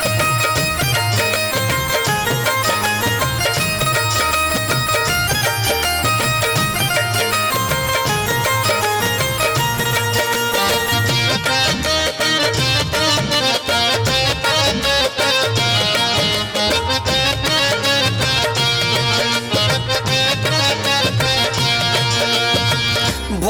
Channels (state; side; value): identical; both; correlation 1.00